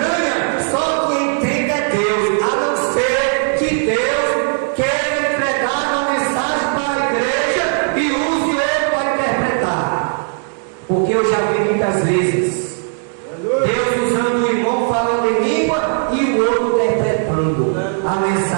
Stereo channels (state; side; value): silent; left; 57 dB below the other